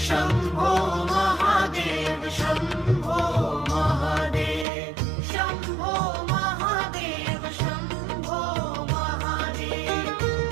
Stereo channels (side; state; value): left; drops out; at 4.7 s